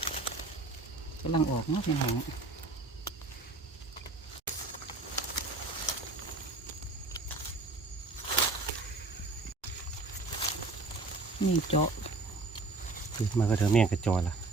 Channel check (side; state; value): left; quieter; 3.3 dB